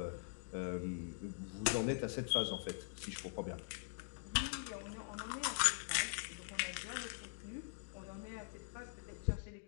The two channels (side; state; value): right; silent; digital silence